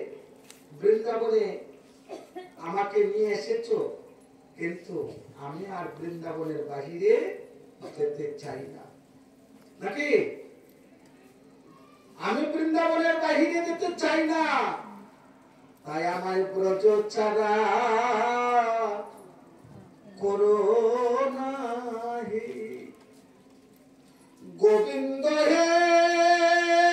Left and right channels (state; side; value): identical; both; correlation 1.00